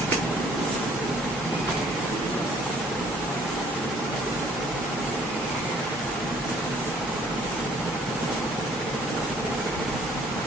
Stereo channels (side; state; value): both; normal; correlation 0.59